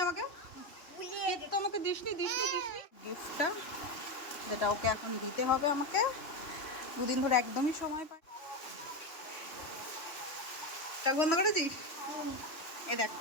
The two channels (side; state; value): right; late; 3.1 ms